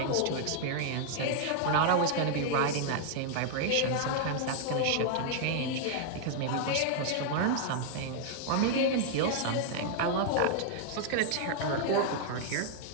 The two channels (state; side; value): different; both; correlation -0.01